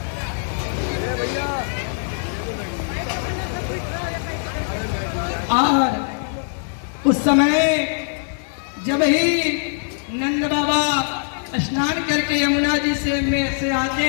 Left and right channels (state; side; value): silent; right; digital silence